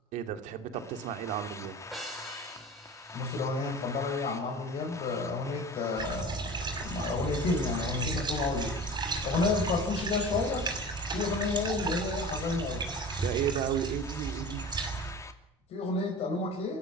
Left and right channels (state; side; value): normal; both; correlation 0.37